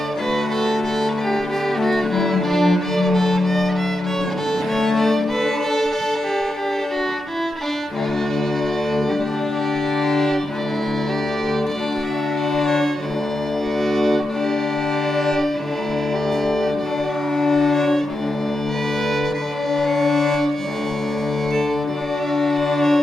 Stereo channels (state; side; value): normal; both; correlation 0.87